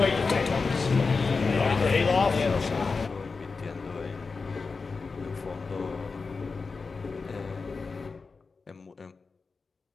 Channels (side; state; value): right; quieter; 4.5 dB